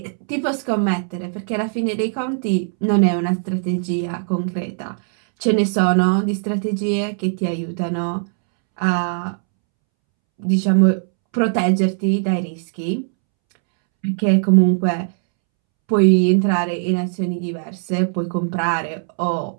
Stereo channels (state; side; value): silent; left; 66 dB below the other